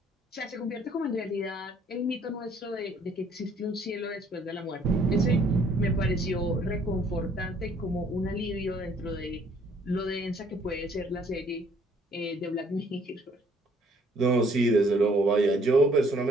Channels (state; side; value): normal; both; correlation 0.62